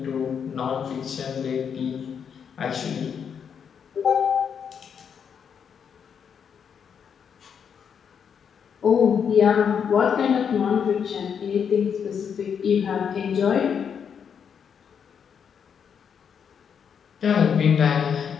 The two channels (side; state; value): right; quieter; 7.3 dB